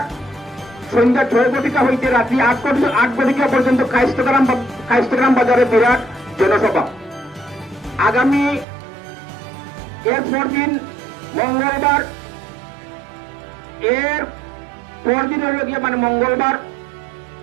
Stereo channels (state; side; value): drops out; left; at 8.7 s